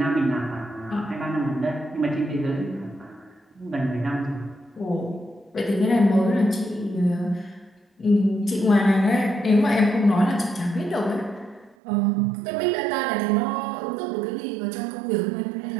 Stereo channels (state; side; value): drops out; left; at 11.8 s